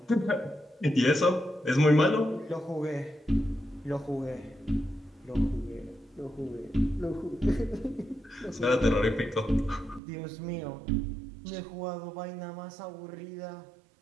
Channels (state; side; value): drops out; left; at 10.0 s